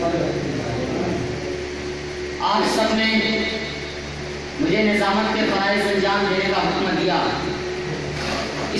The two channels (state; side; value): identical; both; correlation 1.00